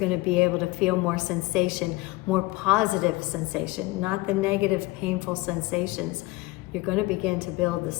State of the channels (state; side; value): quieter; right; 21.3 dB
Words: to be able to feel more sensation, more positive sensation, not the negative, painful sensations. You're going to begin to build the